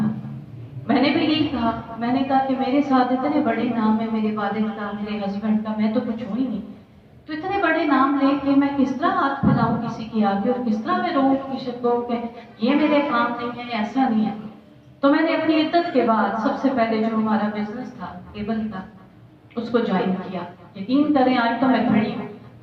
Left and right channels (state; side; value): identical; both; correlation 1.00